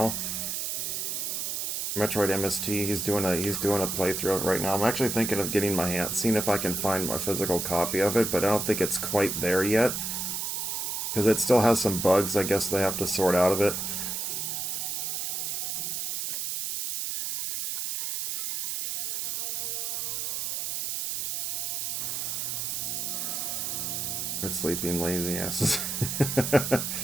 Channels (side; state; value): right; noise; hiss, 2 dB below the sound